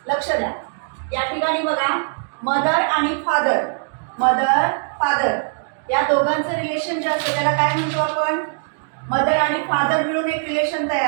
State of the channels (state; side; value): silent; left; digital silence